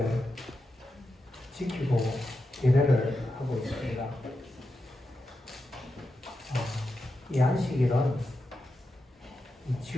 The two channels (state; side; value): normal; both; correlation 0.88